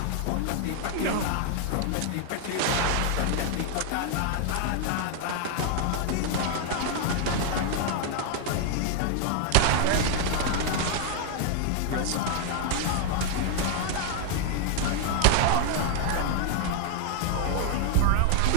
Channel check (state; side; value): different; both; correlation 0.00